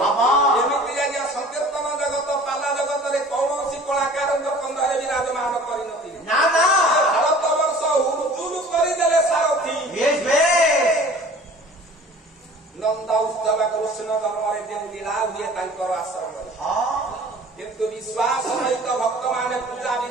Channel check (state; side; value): normal; both; correlation 0.46